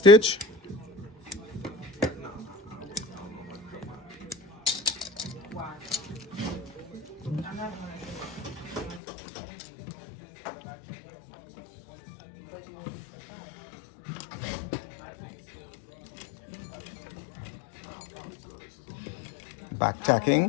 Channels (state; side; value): drops out; right; at 9.0 s